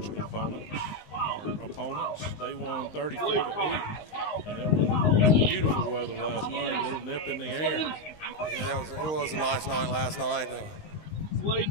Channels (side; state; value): right; late; 19 ms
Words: opponents, they won 34-8, and it was beautiful weather last night, a little nip in the air. Yeah, it was a nice night last night.